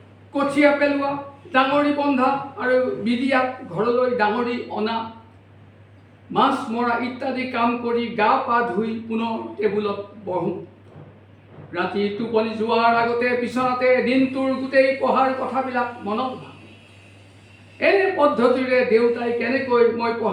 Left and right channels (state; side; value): identical; both; correlation 1.00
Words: কঠীয়া পেলোৱা, ডাঙৰি বন্ধা আৰু বিদিয়াত ঘৰলৈ ডাঙৰি অনা, মাছ মৰা ইত্যাদি কাম কৰি গা পা ধুই পুনৰ টেবুলত বহোঁ। ৰাতি টোপনি যোৱাৰ আগতে বিচনাতে দিনটোৰ গোটেই পঢ়াৰ কথাবিলাক মনত ভাবোঁ। এনে পদ্ধতিৰে দেউতাই কেনেকৈ মই